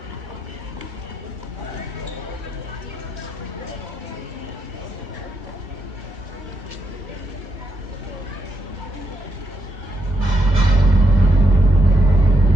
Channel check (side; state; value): left; late; 1.9 ms